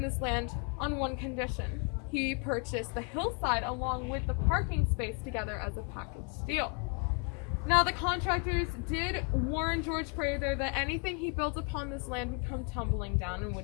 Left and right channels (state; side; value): quieter; right; 37.2 dB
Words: this land on one condition. He purchased the hillside along with the parking space together as a package deal. Now, the contractors did warn George Prather that anything he built upon this land would come tumbling down and